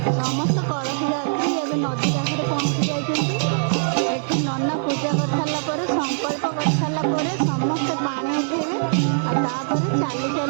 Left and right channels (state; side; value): silent; left; 59 dB below the other